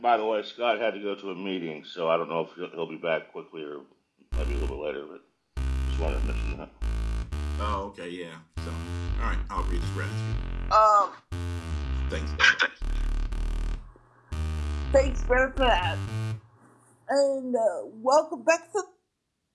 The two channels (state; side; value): identical; both; correlation 1.00